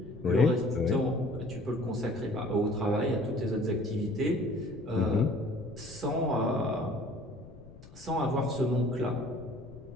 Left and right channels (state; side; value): noise; left; rumble, 19 dB below the sound